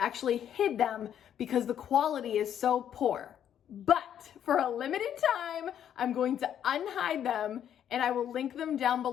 hid them because the quality is so poor. But for a limited time, I'm going to unhide them and I will link them down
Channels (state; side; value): quieter; right; 9.7 dB